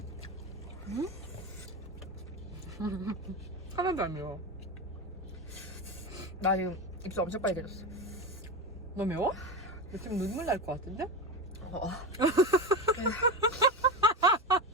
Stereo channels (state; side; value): normal; both; correlation 0.20